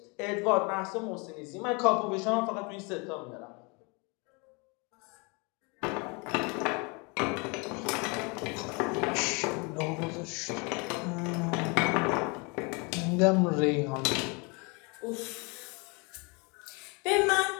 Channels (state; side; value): quieter; right; 30.4 dB